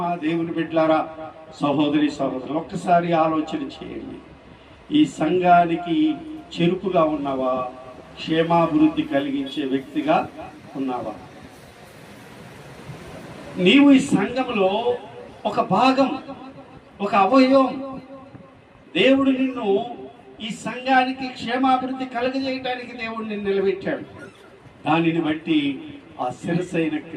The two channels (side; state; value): both; identical; correlation 1.00